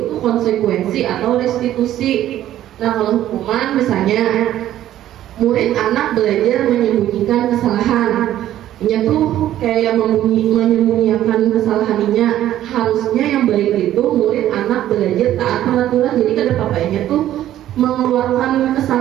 konsekuensi atau restitusi. Nah kalau hukuman misalnya murid anak belajar menyembunyikan kesalahan. Ini tuh kayak menyembunyikan kesalahannya. Harusnya yang baik itu murid anak belajar taat peraturan. Jadi kada papanya tuh mengeluarkan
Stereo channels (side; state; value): left; quieter; 12.6 dB